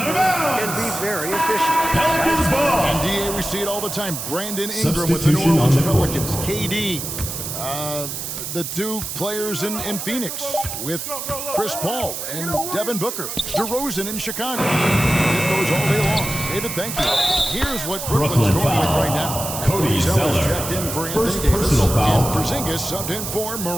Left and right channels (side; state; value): right; noise; hiss, 6 dB below the sound